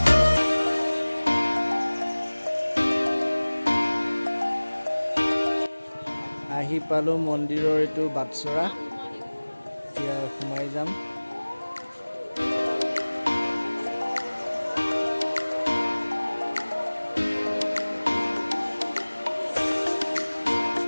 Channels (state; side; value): inverted; both; correlation -1.00